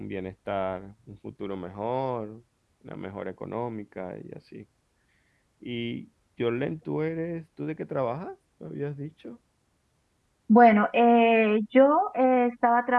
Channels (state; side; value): identical; both; correlation 1.00